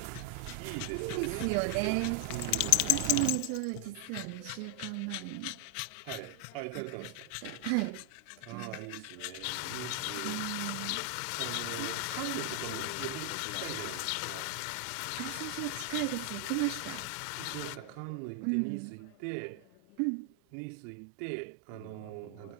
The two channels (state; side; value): different; both; correlation 0.00